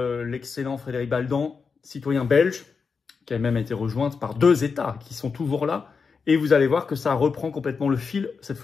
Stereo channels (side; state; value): right; quieter; 5.3 dB